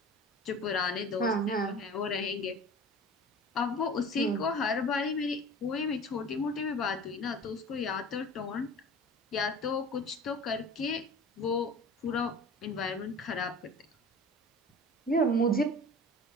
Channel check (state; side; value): normal; both; correlation 0.39